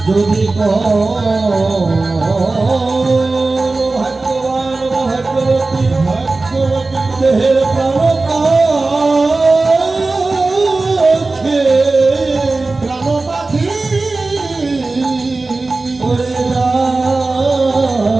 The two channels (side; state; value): left; quieter; 3.4 dB